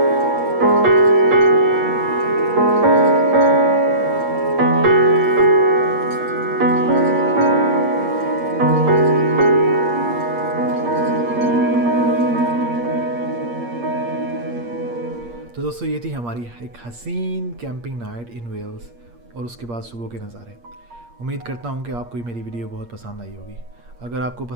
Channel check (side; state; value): left; late; 8.5 ms